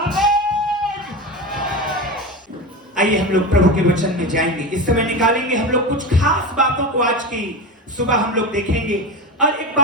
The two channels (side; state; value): both; normal; correlation 0.23